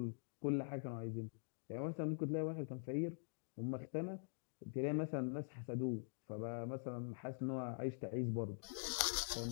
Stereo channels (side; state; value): right; silent; digital silence